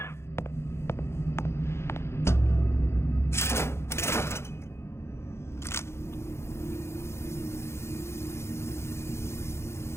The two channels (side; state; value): right; late; 0.13 ms